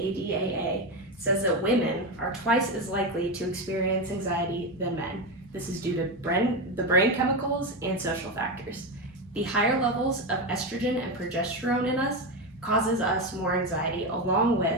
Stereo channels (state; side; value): normal; both; correlation 0.14